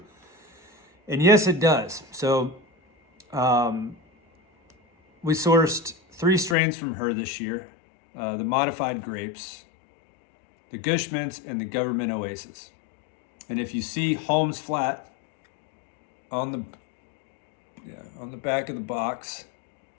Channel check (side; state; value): right; drops out; at 6.6 s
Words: And yes, it does. So we sourced 3 strains from her this year, the modified grapes, the Gush Mintz, and the Governmint Oasis. And if you see Holmes Flat on the back of the box,